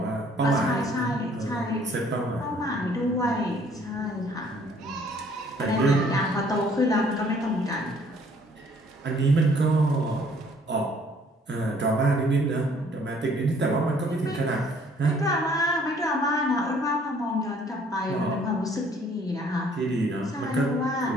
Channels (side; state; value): both; normal; correlation 0.60